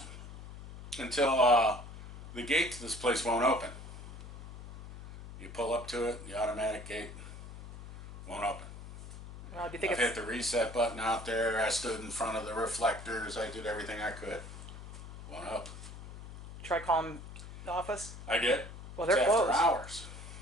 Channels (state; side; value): noise; left; hum, 13 dB below the sound